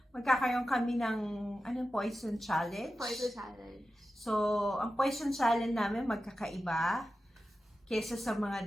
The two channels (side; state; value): both; normal; correlation 0.93